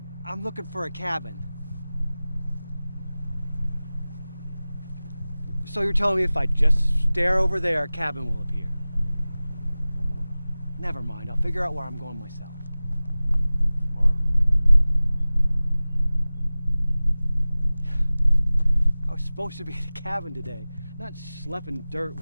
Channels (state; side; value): inverted; both; correlation -0.98